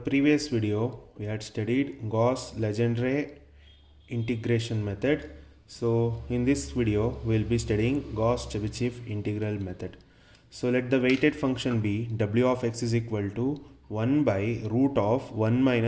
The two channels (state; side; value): identical; both; correlation 1.00